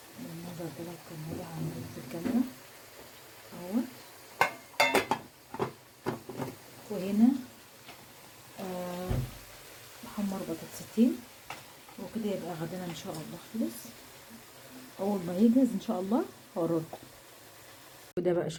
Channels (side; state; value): both; identical; correlation 1.00